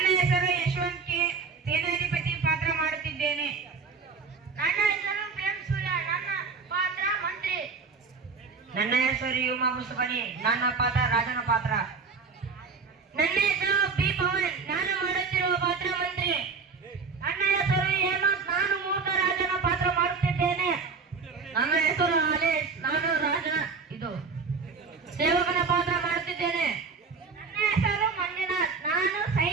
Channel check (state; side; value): quieter; left; 4.9 dB